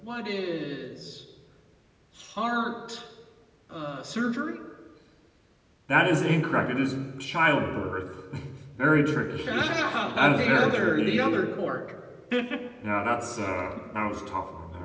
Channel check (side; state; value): both; identical; correlation 1.00